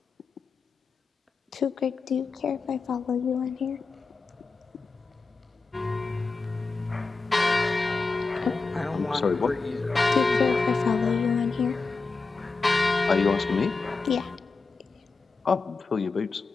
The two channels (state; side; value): quieter; right; 4.2 dB